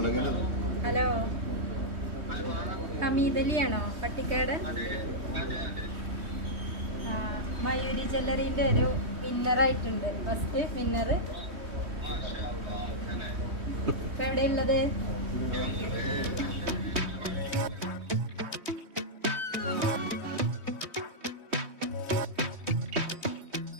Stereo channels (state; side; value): late; left; 3.2 ms